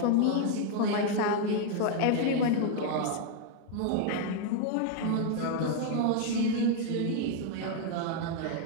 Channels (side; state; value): both; different; correlation 0.00